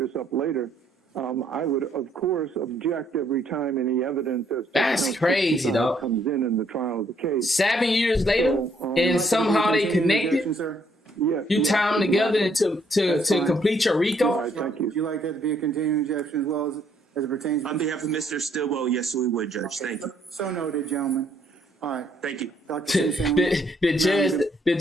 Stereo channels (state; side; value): normal; both; correlation 0.68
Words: up later. I would, of course, object every time any evidence as to That's crazy, though. comes in the trial of the case. 7 years later, and somehow they connected. Yes. You tie them together to complete your RICO. All right, thank you. Would you like that to be a continuing objection as well as it pertains to... On behalf of Mr. Stillwell, yes, we would, Judge. Thank you. So noted, gentlemen. All right. Thank you. Dr. The